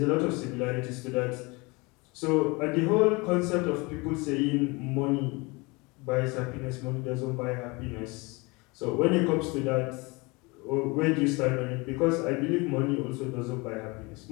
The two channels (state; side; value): quieter; right; 26.2 dB